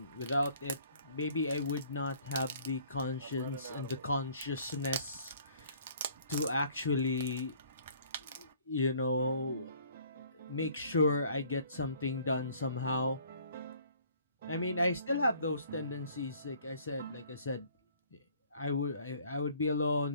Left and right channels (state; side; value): inverted; both; correlation -0.57